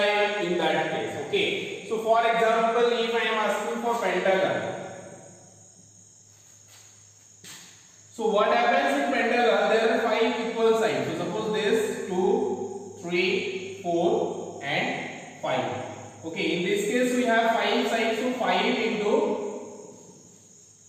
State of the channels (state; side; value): identical; both; correlation 1.00